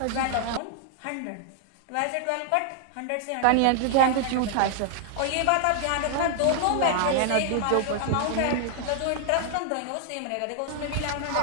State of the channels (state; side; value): different; both; correlation 0.00